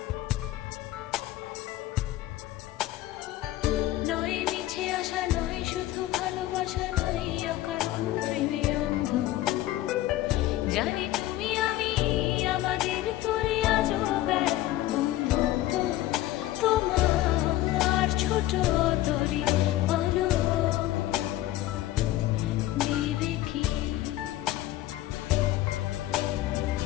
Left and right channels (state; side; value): quieter; right; 15.3 dB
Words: নয় মিছে আশা নয় শুধু ভালোবাসা নয় অকারণ প্রেমে অন্ধ জানি তুমি আমি আমাদের তোরে আজও বন্ধুত্ব তোমার ছোট তরি বলো নেবে কি